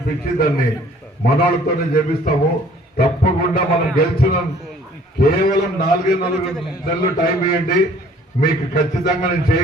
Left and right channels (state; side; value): normal; both; correlation 0.56